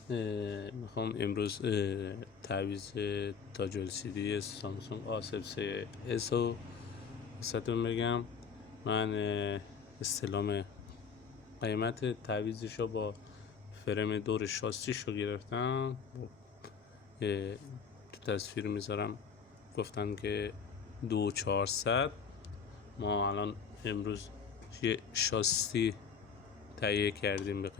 میخوام امروز تعویض تاج LCD سامسونگ A03s رو واسهتون بگم. من استلام قیمت تعویضش رو با فرم دور شاسیش رو گرفتم. تو تصویر میذارم، گفتن که 2400. ما الان امروز یه شاسی تهیه کردیم به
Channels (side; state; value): right; quieter; 6.3 dB